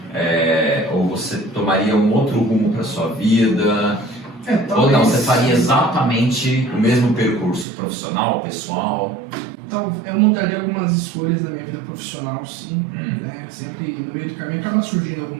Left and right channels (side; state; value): left; drops out; at 7.7 s